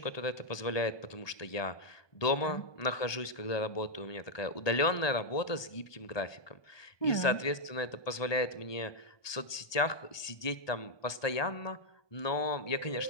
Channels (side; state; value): right; late; 1.2 ms